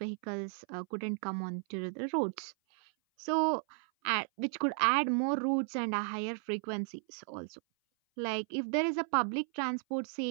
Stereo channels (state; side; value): silent; left; 55 dB below the other